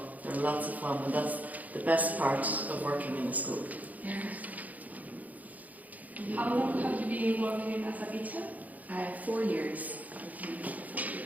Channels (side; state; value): left; late; 0.077 ms